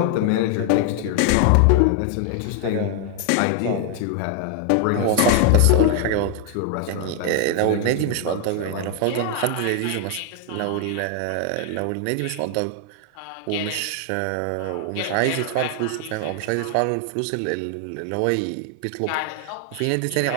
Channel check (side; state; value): both; different; correlation 0.00